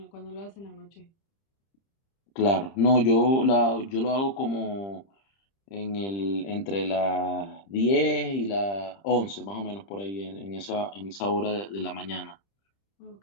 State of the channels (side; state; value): right; late; 30 ms